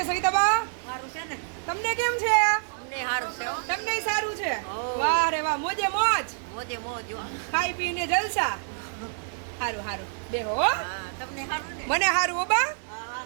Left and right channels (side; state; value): left; silent; 60 dB below the other